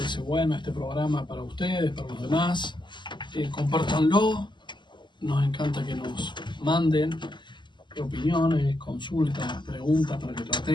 bueno este programa para ustedes, para los demás, compártanlo. Nos encanta que nos manden opiniones, consultas, preguntas para que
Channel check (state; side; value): late; right; 0.22 ms